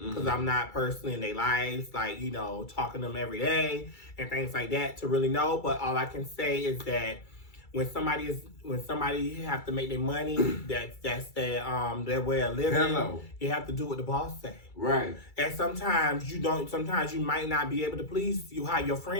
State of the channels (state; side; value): late; right; 2.3 ms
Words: I'm not personally in their lives, talking to them every day and things like that to really know. But all I can say is that when somebody have to make their money, that's their way of living. Hello. You have to do what the boss say. Right. And sometimes you don't. Sometimes you might not be able to please how your